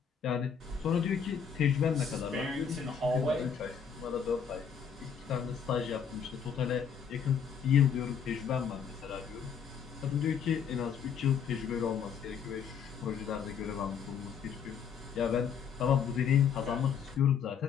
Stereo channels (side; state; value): right; quieter; 7.1 dB